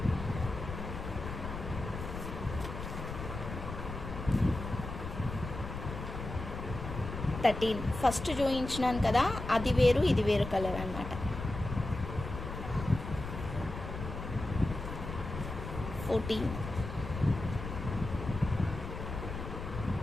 ఫస్ట్ చూపించినాను కదా, అది వేరు ఇది వేరు కలర్ అనమాట. 14.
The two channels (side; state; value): left; noise; rumble, 7 dB below the sound